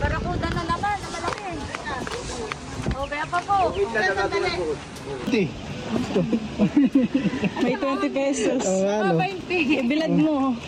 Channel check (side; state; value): both; identical; correlation 1.00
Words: na naman, na malaki. O, kaya pa po. May 20 pesos. ano, Ibilad mo.